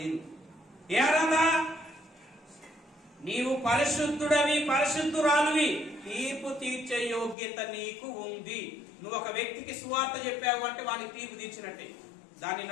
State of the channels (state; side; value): drops out; right; at 7.4 s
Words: ఏ అర్హత? నీవు పరిశుద్ధుడవి, పరిశుద్ధురాలువి, తీర్పు తీర్చే యోగ్యత నీకు ఉంది. నువ్వు ఒక వ్యక్తికి సువార్త చెప్పావు అంటే వానికి తీర్పు తీర్చినట్టే. దాన్ని